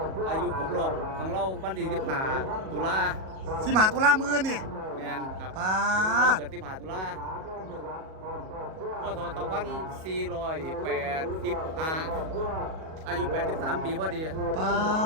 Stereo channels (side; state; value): left; late; 37 ms